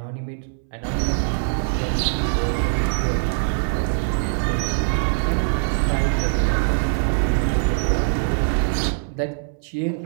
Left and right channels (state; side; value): silent; left; 62 dB below the other